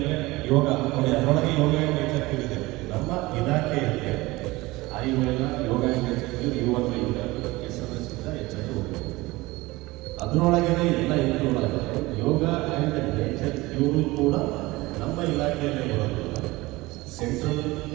ಯೋಗ ನೋಡಿ, ಅದರೊಳಗೆ ಯೋಗ ನೇಚರ್ ಇದೆ. ನಮ್ಮ ಇಲಾಖೆಯಲ್ಲಿ ಆಯುರ್ವೇದ, ಯೋಗ ನೇಚರ್, ಯು ಅಂದರೆ ಯುನಾನಿ, ಎಸ್ ಅಂದರೆ ಸಿದ್ಧ, ಎಚ್ ಅಂದರೆ ಹೋಗಿ ಅದರೊಳಗೇ ಎಲ್ಲ ಇನ್ಕ್ಲೂಡ್ ಆಗುತ್ತೆ. ಯೋಗ ಆ್ಯಂಡ್ ನೇಚರ್ ಇವರು ಕೂಡ ನಮ್ಮ ಇಲಾಖೆಯಲ್ಲೇ ಬರೋದಿಲ್ಲ, ಸೆಂಟ್ರಲ್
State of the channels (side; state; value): left; quieter; 20.7 dB